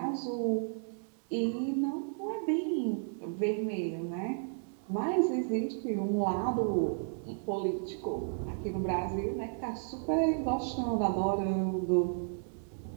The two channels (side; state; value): left; silent; digital silence